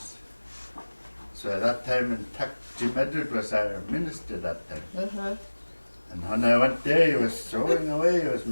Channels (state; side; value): inverted; both; correlation -1.00